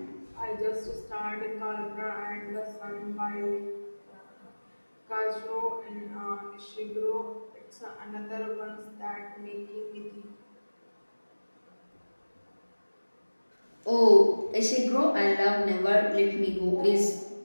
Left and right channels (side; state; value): both; inverted; correlation -1.00